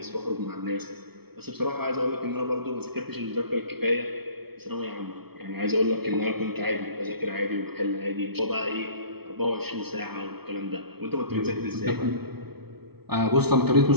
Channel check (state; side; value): late; left; 0.96 ms